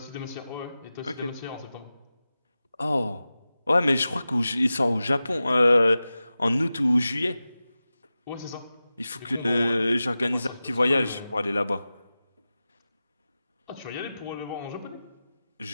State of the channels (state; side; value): inverted; both; correlation -0.95